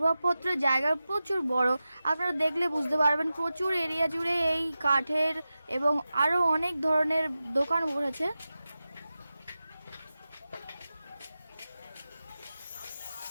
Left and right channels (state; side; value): inverted; both; correlation -0.94